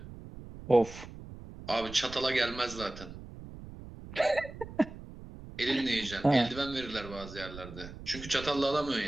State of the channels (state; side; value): noise; right; rumble, 14 dB below the sound